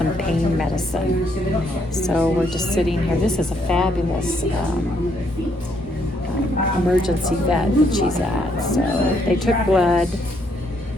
pain medicine. So we're just sitting here. This is a fabulous emergency vet that she's at. So they took blood.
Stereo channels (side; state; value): both; normal; correlation 0.72